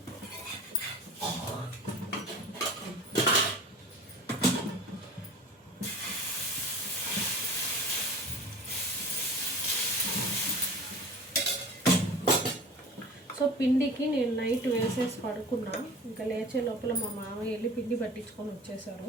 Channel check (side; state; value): both; normal; correlation 0.39